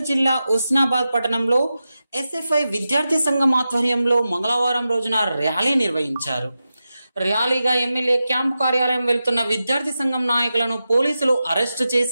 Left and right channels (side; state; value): both; inverted; correlation -0.92